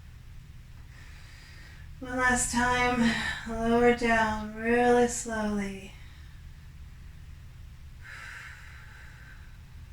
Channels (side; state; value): both; identical; correlation 1.00